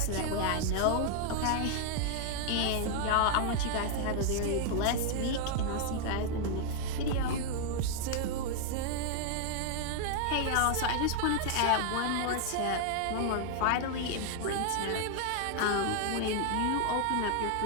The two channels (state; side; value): different; both; correlation 0.00